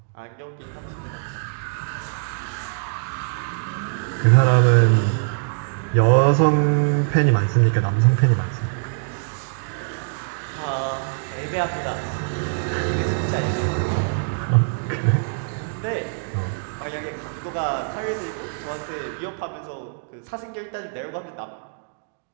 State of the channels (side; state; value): left; silent; digital silence